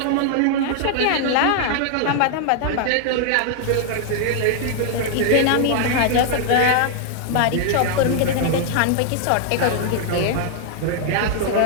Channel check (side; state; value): both; different; correlation 0.00